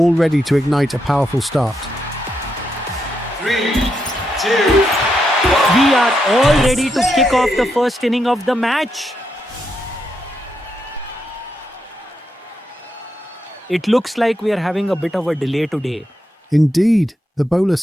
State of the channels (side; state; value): both; normal; correlation 0.82